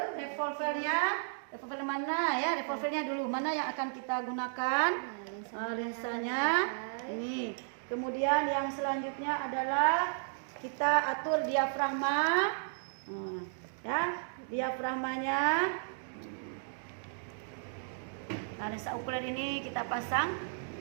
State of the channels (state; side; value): silent; left; digital silence